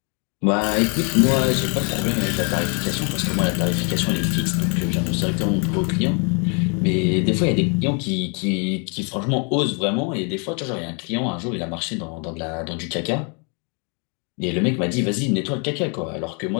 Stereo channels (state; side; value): quieter; right; 36.6 dB